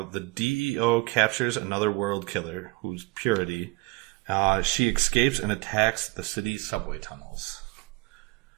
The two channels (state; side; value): quieter; left; 23.7 dB